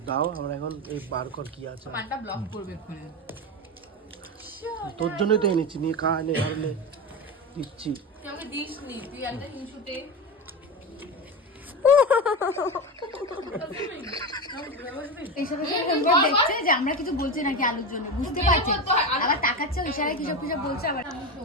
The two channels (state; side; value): normal; both; correlation 0.19